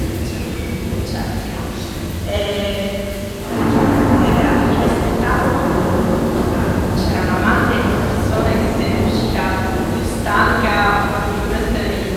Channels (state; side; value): identical; both; correlation 1.00